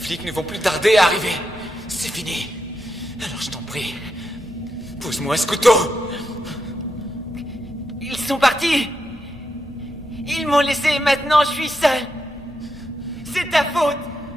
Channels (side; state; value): both; normal; correlation 0.85